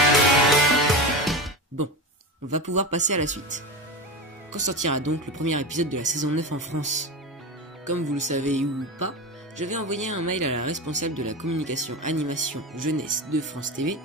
Bon, on va pouvoir passer à la suite. Quand sortira donc le premier épisode de la saison 9 en France? Comme vous le savez ou pas, j'avais envoyé un mail à la responsable de la communication animation jeunesse de France TV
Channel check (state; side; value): normal; both; correlation 0.22